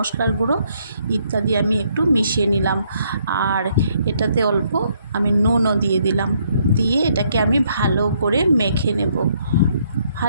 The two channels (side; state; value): both; inverted; correlation -0.70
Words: গুঁড়ো ইত্যাদি আমি একটু মিশিয়ে নিলাম। আর এটাতে অল্প আমি নুনও দিয়ে দিলাম। দিয়ে এটাকে আমি ভালো করে মেখে নেব।